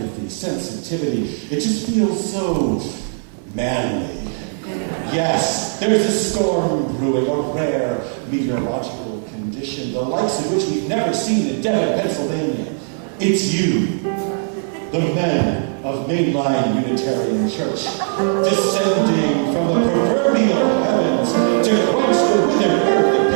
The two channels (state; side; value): silent; left; 66 dB below the other